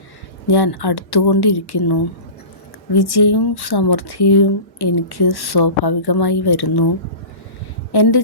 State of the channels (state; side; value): late; right; 1.1 ms